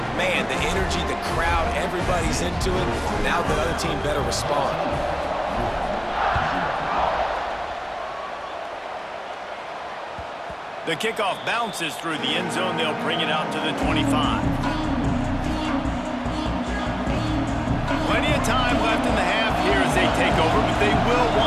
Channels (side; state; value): both; identical; correlation 1.00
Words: man, the energy, the crowd, everybody's into it. Now the other team better respond. The kickoff bounces through the end zone. They'll bring it out to the 25. Plenty of time left in the half here as they take over, but they will